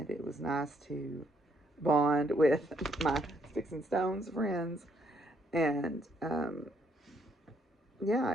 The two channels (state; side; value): normal; both; correlation 0.71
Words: it was nice to bond with my Sticks and Stones friends. And yeah,